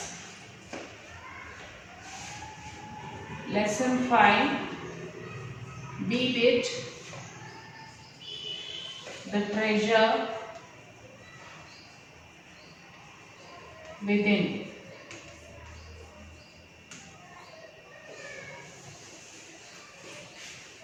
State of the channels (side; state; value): both; identical; correlation 1.00